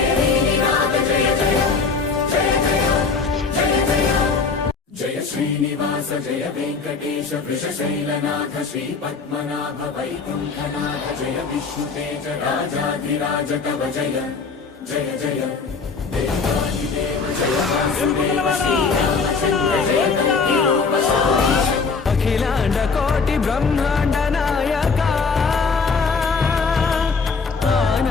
निनाद जय जय जय जय जय जय जय श्रीनिवास जय वेङ्कटेश वृषशैलनाथ श्री पद्मनाभ वैकुण्ठनाथ जय विष्णुतेज राजाधिराज तव जय जय जय देवादिदेव जय वासुदेव श्रीरामचन्द्र जय कल्किरूप शौरीश अखिलांड कोटि ब्रह्मांड नायका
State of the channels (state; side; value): quieter; right; 4.8 dB